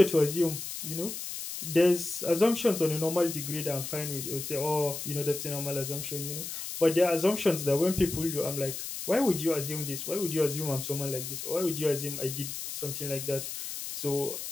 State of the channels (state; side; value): noise; left; hiss, 7 dB below the sound